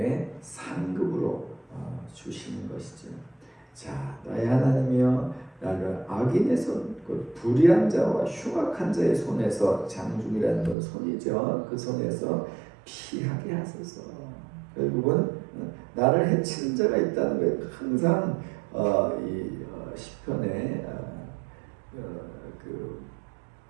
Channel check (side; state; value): left; drops out; at 10.8 s